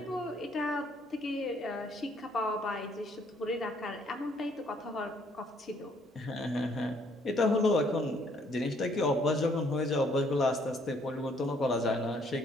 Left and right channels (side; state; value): both; normal; correlation 0.66